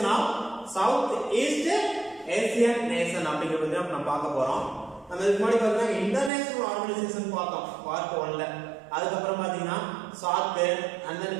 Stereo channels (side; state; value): left; drops out; at 6.3 s